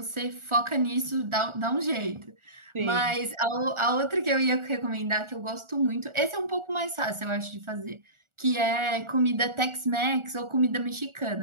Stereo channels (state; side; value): late; left; 1.4 ms